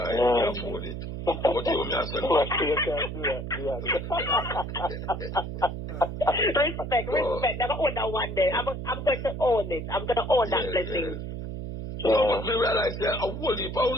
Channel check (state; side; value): noise; right; hum, 6 dB below the sound